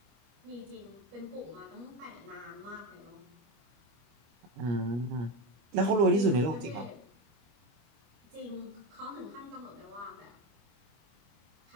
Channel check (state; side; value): late; left; 25 ms